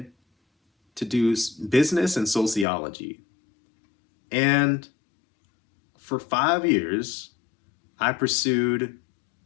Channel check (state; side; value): drops out; right; at 2.7 s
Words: to do business and sociology. And for 5 years, I pursued